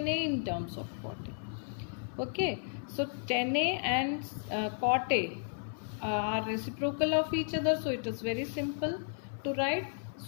A in terms of cot A. Okay, so tan A and cot A are reciprocal of each other, so it is very simple to write.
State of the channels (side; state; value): right; silent; 55 dB below the other